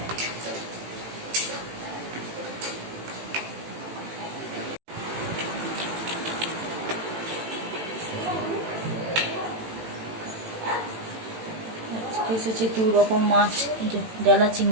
এসেছে দু রকম মাছ, ডালা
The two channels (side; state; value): left; late; 18 ms